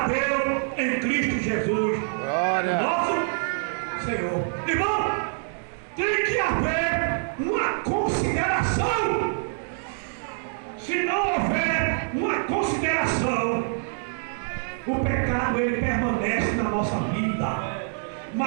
Deus em Cristo Jesus, Glória. nosso Senhor. Irmão, tem que haver uma consideração. Se não houver uma consideração, o pecado ele permanece na nossa vida.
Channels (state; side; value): silent; left; 61 dB below the other